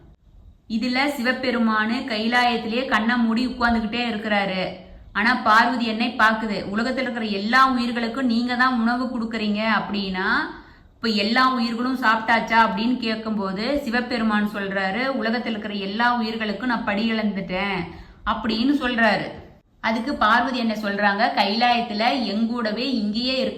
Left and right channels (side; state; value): both; identical; correlation 1.00